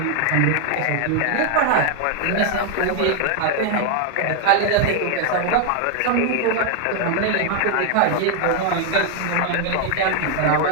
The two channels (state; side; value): different; both; correlation 0.00